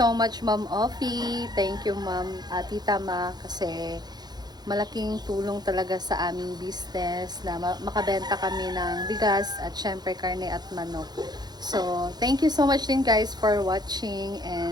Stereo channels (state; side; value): late; left; 0.20 ms